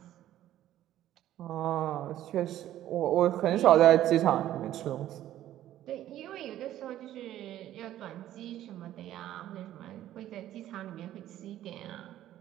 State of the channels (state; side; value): quieter; left; 12.9 dB